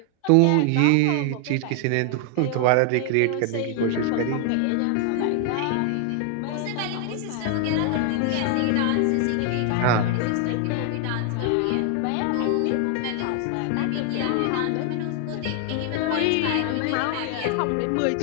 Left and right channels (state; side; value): different; both; correlation 0.00